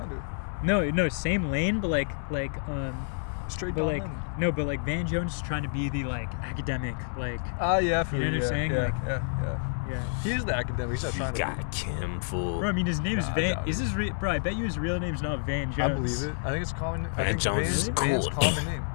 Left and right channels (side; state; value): right; silent; digital silence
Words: of. no, same lane, but like Straight but Don like Lemon. no, but like Van Jones is trying to be the like academic, like Yeah, I feel You know what I'm yeah, saying? Yeah, Like- yeah. He is the academic. He's not You trying to. got Kim fool. bro. I mean, his name's Nah, I Van. doubt Is it. his bro? I bet you his real name's not Van Jones. I believe it. I think it's a common. I Van think Jones Van's, is Van's cool. common name.